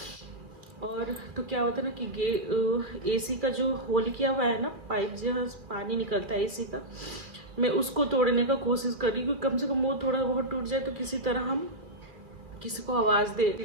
और तो क्या होता है ना कि एसी का जो होल किया हुआ है ना, पाइप जो पानी निकलता है एसी का, मैं उसको तोड़ने का कोशिश कर रही हूँ कि कम से कम वो थोड़ा बहुत टूट जाए तो किसी तरह हम किसी को आवाज़ दे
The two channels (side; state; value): left; late; 2.4 ms